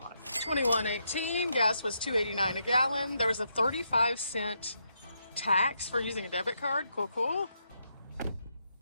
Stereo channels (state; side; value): inverted; both; correlation -0.80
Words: 21.18, gas was $2.89 a gallon. There was a 35-cent tax for using a debit card. Cool.